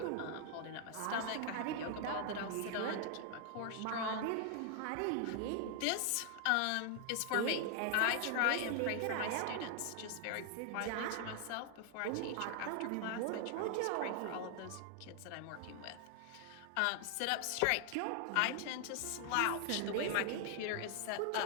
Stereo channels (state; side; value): different; both; correlation 0.00